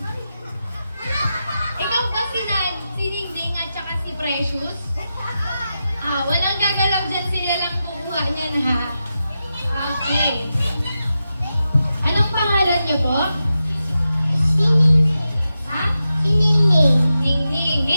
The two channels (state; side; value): inverted; both; correlation -0.90